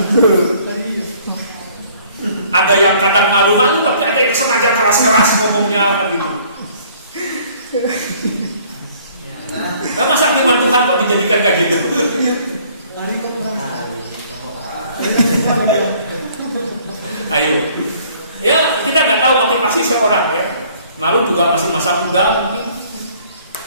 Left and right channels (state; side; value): inverted; both; correlation -0.58